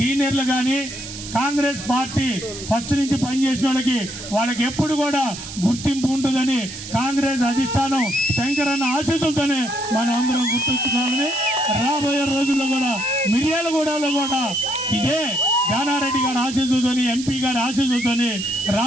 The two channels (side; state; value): right; noise; hiss, 11 dB below the sound